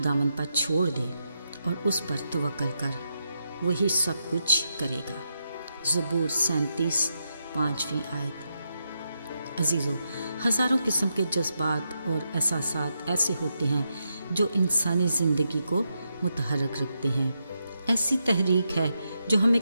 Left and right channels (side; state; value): both; inverted; correlation -0.84